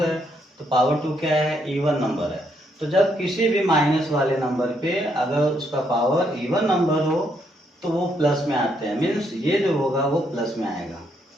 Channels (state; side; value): normal; both; correlation 0.74